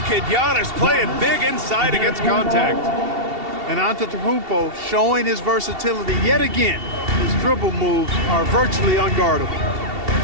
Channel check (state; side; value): late; left; 2.7 ms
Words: at Giannis playing big inside against contact. And Antetokounmpo showing his versatility yet again. His dribble moves are virtually unguardable.